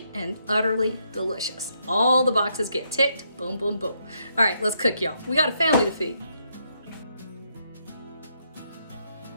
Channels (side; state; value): both; inverted; correlation -0.76